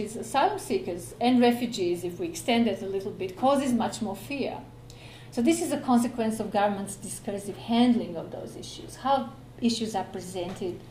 is asylum seekers and refugees, if we extend it a little bit, causes much more fear. So this is a consequence of government's discursive handling of those issues, how issues are presented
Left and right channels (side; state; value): both; identical; correlation 1.00